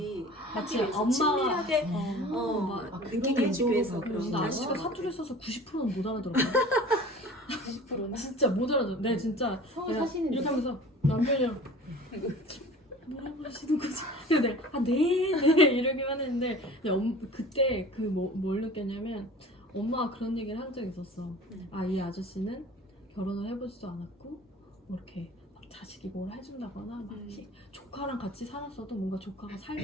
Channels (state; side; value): normal; both; correlation 0.42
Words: 마치 위해서 엄마가 친밀하게 막 느끼게 해주기 위해서 그런 그런 근데 거. 아저씨가 사투리 써서 90%는 못 알아들어요. 90%나? 진짜 못 알아들어. 네, 진짜 성을 내가 사시는데 이렇게 하면서 남편이랑 뭐라고 하시는 거지? 근데 네 이러기만 했는데 그때 뭘 느꼈냐면 엄마가 그런 얘기를 한 적이 있었어. 이 아저씨는 결혼을 해보지도 않았고 뭐 이렇게 막 자식이 뭘 해준다거나 막 이렇게 조카랑 같이 살았어도 뭔가 조카가